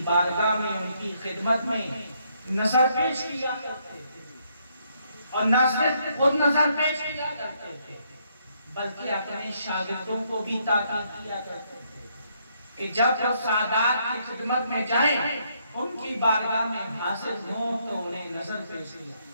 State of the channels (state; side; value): inverted; both; correlation -0.72